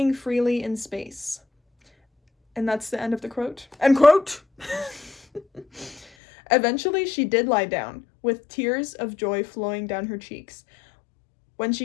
freely in space. And that's the end of the quote. End quote! Eventually, she did lie down, with tears of joy flowing down her cheeks. When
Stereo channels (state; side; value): drops out; right; at 6.1 s